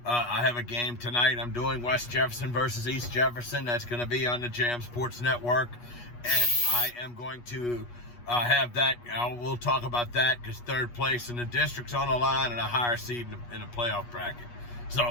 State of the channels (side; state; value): right; late; 8.3 ms